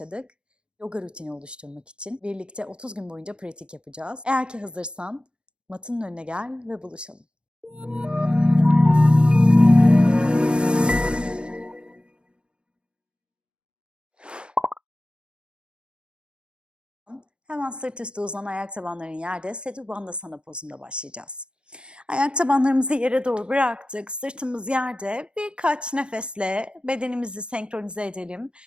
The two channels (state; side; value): late; left; 0.055 ms